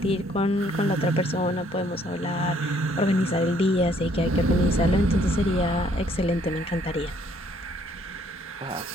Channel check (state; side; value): normal; both; correlation 0.64